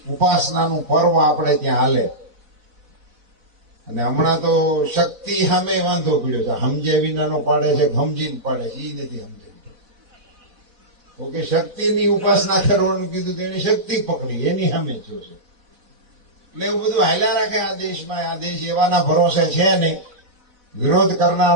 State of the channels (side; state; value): left; late; 4.1 ms